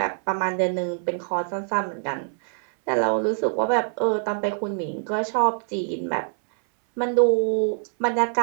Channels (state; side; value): silent; left; 62 dB below the other